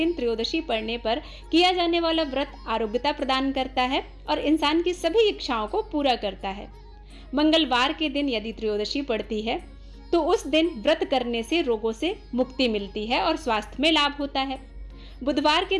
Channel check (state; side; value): identical; both; correlation 1.00